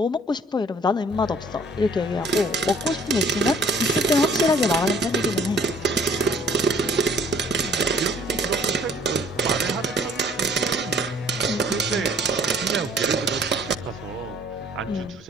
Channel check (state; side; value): normal; both; correlation 0.57